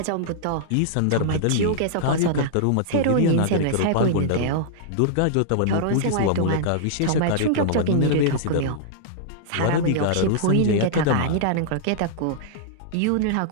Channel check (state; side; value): different; both; correlation -0.01